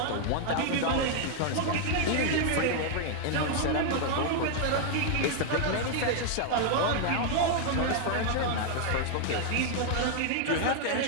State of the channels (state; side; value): different; both; correlation 0.00